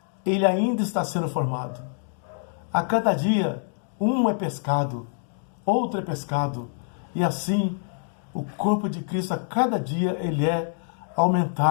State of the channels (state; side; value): silent; right; 61 dB below the other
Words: ele ainda está sendo formado. A cada dia, um é pescado, outro é pescado. E assim, o corpo de Cristo, a cada dia, ele é